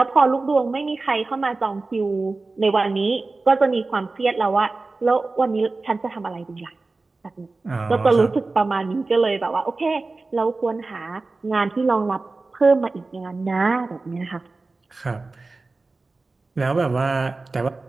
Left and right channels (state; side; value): quieter; left; 3.5 dB